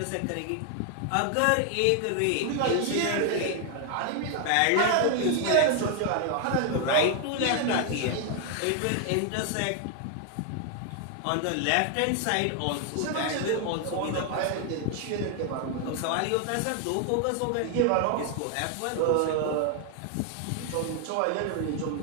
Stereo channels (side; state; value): both; different; correlation 0.00